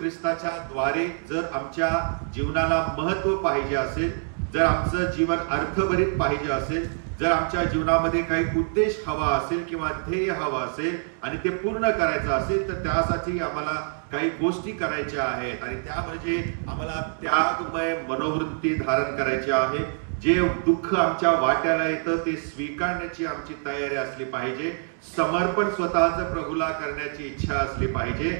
द्वारे जर आमच्या जीवनाला महत्व पाहिजे असेल, जर आमचं जीवन अर्थभरित पाहिजे असेल, जर आमच्या जीवनामध्ये काही उद्देश हवा असेल किंवा ध्येय हवा असेल आणि ते पूर्ण करायचं असेल तर त्यासाठी आम्हाला काही गोष्टी करायच्या आहेत. आणि त्या म्हणजे आम्हाला त्यागमय मनोवृत्ती धारण करायची आहे. जे दुःख आमच्या वाट्याला येतं ते स्वीकारण्याची आमची तयारी असली पाहिजे. समर्पण स्वतःच प्रभूला करण्याची इच्छा असली पाहिजे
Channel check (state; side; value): silent; left; digital silence